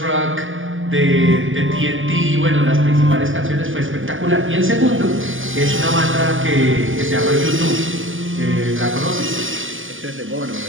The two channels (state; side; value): late; left; 0.58 ms